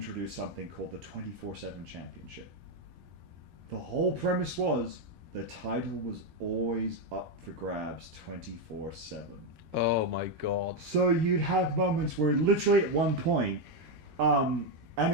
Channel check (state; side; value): late; left; 13 ms